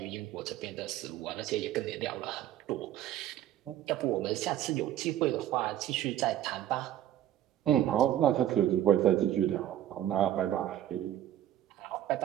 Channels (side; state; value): left; quieter; 12.0 dB